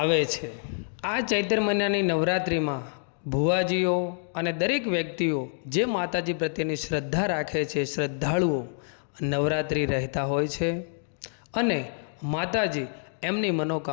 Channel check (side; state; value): right; silent; digital silence